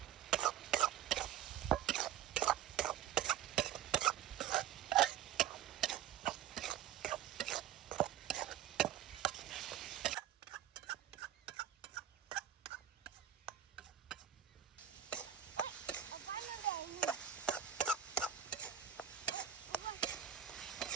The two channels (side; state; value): left; quieter; 10.0 dB